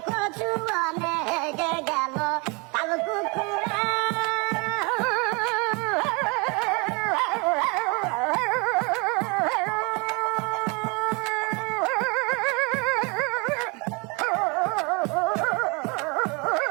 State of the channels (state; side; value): quieter; left; 30.1 dB